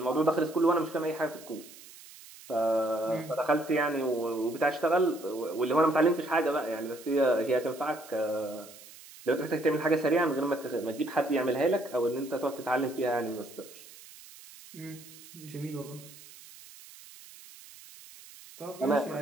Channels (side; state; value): right; noise; hiss, 19 dB below the sound